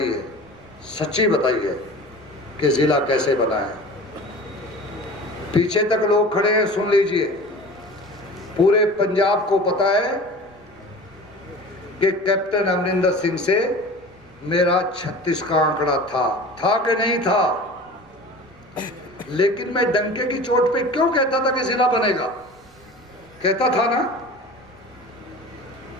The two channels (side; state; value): right; noise; rumble, 29 dB below the sound